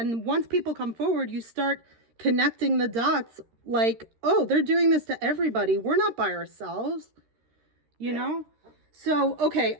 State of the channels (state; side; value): late; left; 13 ms